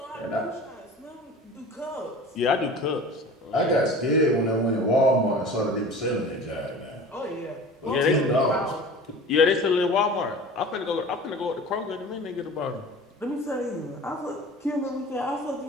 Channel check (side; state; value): both; normal; correlation 0.39